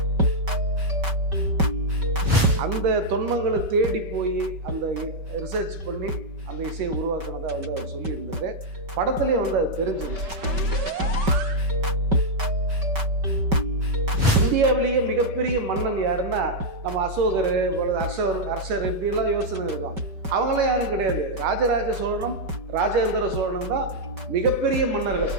அந்த தொன்மங்களை தேடி போய் அந்த ரிசர்ச் பண்ணி அந்த இசையை உருவாக்குனதா வந்து அவர் சொல்லியிருந்தாரு. படத்துலேயே வந்து அது தெரிஞ்சுது. இந்தியாவிலேயே மிகப்பெரிய மன்னன் யாருன்னா நம்ம அசோகர், ஹர்ஷர் இப்படிலாம் யோசனை இருக்கும். அவங்களாம் யாரும் கிடையாது. ராஜராஜ சோழனும் ராஜேந்திர சோழனும் தான் மிகப்பெரிய மன்னர்கள்.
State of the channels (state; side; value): late; left; 5.2 ms